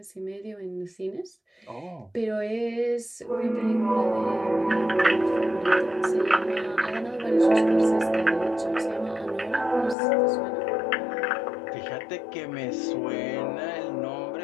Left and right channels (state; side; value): drops out; right; at 10.0 s